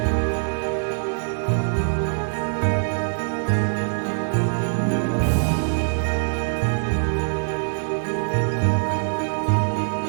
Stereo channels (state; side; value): silent; left; 63 dB below the other